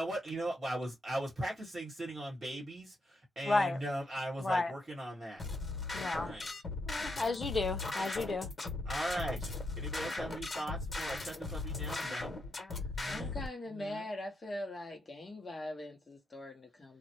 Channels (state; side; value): normal; both; correlation 0.82